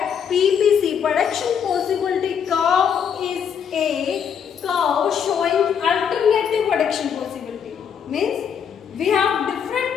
PPC, production possibility curve, is a curve showing alternative production possibility. Means we have different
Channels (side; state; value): right; quieter; 7.7 dB